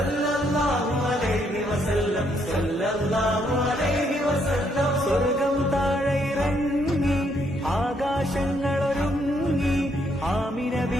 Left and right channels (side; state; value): both; normal; correlation 0.73